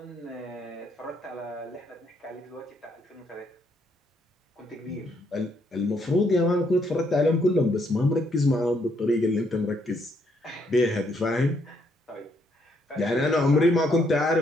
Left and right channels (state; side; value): normal; both; correlation 0.72